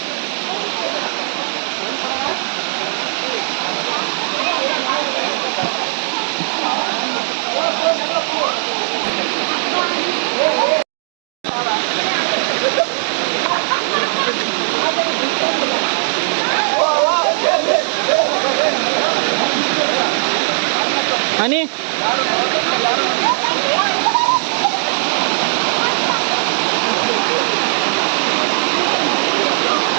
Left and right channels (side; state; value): left; silent; digital silence